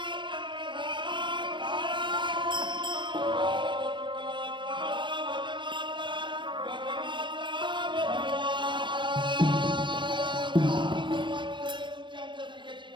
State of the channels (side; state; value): left; late; 0.23 ms